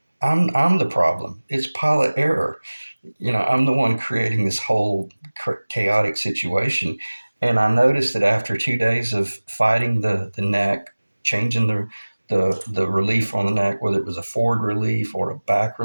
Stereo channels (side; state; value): both; inverted; correlation -1.00